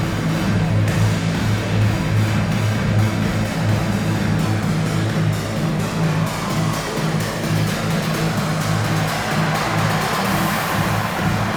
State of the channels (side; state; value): both; identical; correlation 1.00